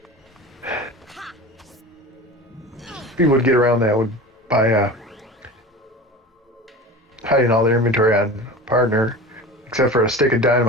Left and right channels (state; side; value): normal; both; correlation 0.33